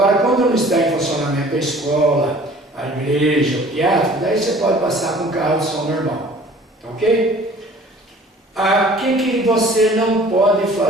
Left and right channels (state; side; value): normal; both; correlation 0.50